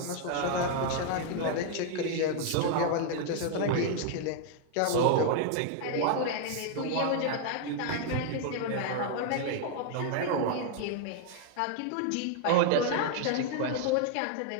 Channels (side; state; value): both; different; correlation 0.00